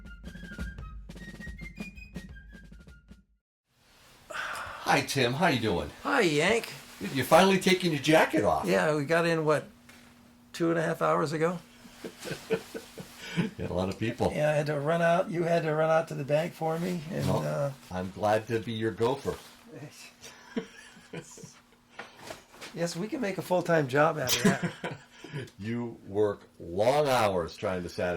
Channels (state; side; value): identical; both; correlation 1.00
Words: Hi, Tim. How you doing? Hi, Yank. You're finally taking your jacket off. Yeah, we got in, what, 2.5 hours ago? Yeah, a lot of people. Yeah, I had to run out. You had to run out to the bank for me. And Well, I'm glad to be your gopher. yes, we can make a full-time job out of that. You work long hours trying to